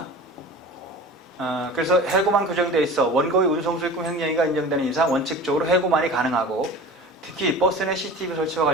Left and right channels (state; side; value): normal; both; correlation 0.37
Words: 그래서 해고만 규정되어 있어 원고의 운송수익금 횡령이가 인정되는 이상 원칙적으로 해고만이 가능하고 특히 버스 내 CCTV 설치와